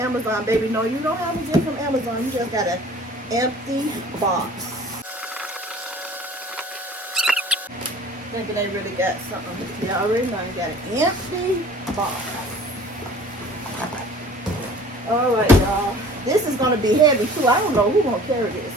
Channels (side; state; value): both; normal; correlation 0.48